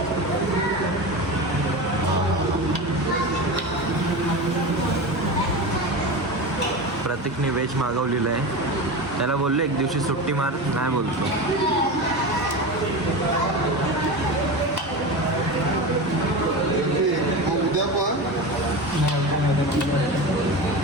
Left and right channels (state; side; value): normal; both; correlation 0.25